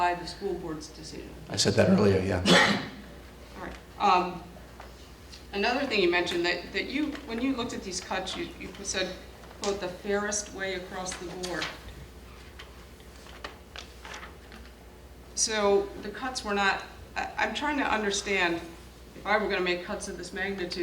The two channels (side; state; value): both; identical; correlation 1.00